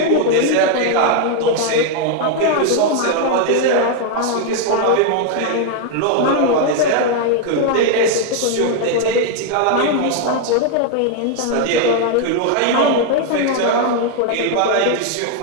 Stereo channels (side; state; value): both; different; correlation 0.00